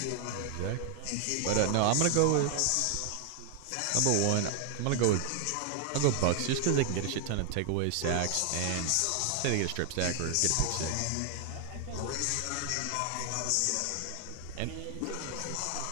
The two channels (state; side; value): different; both; correlation 0.00